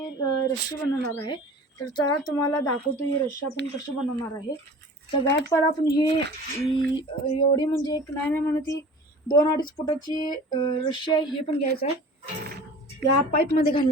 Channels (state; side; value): normal; both; correlation 0.41